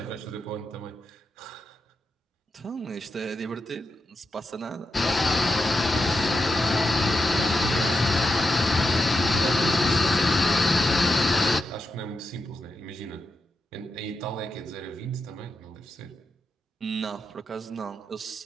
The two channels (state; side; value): normal; both; correlation 0.87